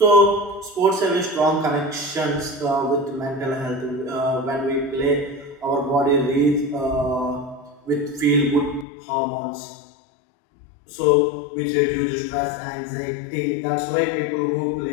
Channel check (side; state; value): right; drops out; at 8.8 s